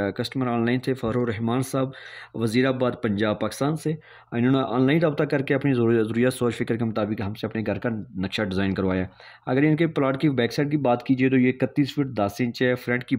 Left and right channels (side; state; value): both; identical; correlation 1.00